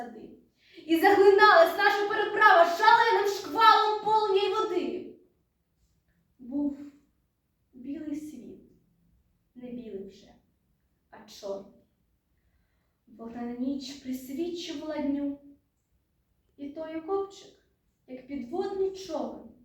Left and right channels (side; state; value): both; identical; correlation 1.00